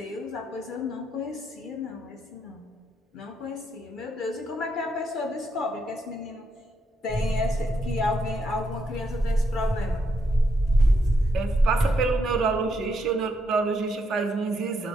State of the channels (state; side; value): normal; both; correlation 0.78